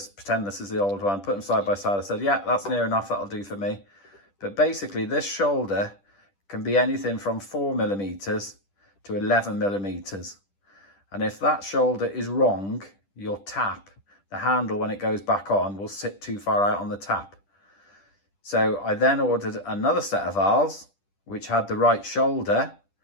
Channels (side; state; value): right; late; 10 ms